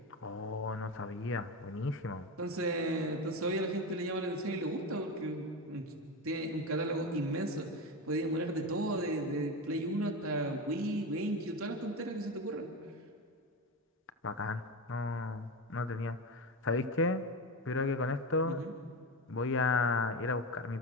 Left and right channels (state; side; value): normal; both; correlation 0.19